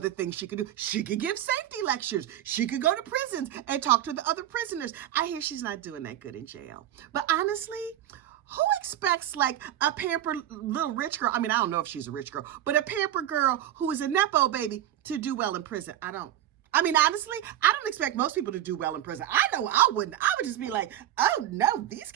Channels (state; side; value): quieter; left; 12.1 dB